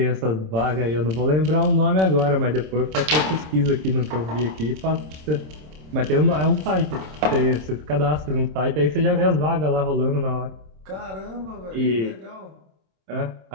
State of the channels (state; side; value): late; left; 26 ms